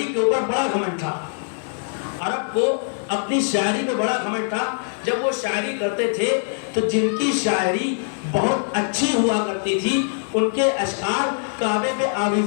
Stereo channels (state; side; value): silent; right; digital silence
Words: کے اوپر بڑا گھمنڈ تھا. عرب کو اپنی شاعری میں بڑا گھمنڈ تھا. جب وہ شاعری کرتے تھے تو جن کی شاعری بہت اچھی ہوا کرتی تھی ان کے اشعار کعبے پہ